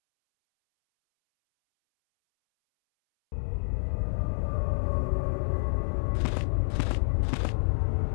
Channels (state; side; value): silent; right; 59 dB below the other